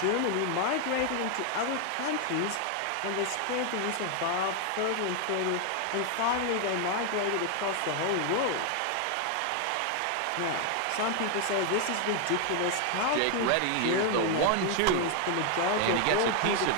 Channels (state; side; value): different; both; correlation 0.01